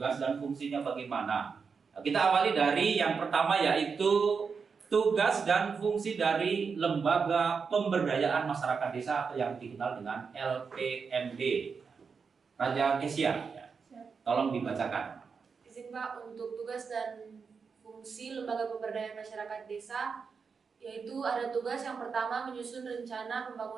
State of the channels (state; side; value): quieter; left; 5.5 dB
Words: dan fungsinya bagaimana. Nah, kita awali dari yang pertama, yaitu tugas dan fungsi dari Lembaga Pemberdayaan Masyarakat Desa atau yang dikenal dengan LPMD. Raja Kesia, ya. Tolong dibacakan. Izin Pak, untuk tugas dan fungsi Lembaga Pemberdayaan Masyarakat Desa, yaitu ada tugas yang pertama menyusun rencana